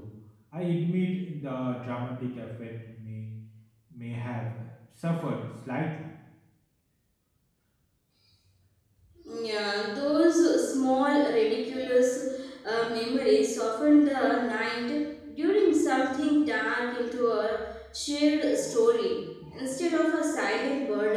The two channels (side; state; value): both; identical; correlation 1.00